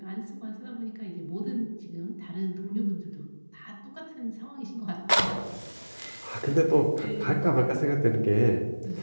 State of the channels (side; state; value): both; inverted; correlation -1.00